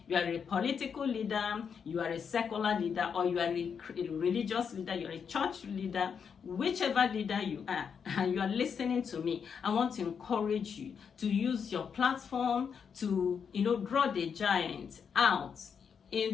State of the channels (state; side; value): quieter; right; 6.7 dB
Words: you are a political leader, you are a secular leader, or you are a religious leader, you are a church leader, whichever leader you are, and you are listening to me, I want to encourage you to use your platform to, draw the giant out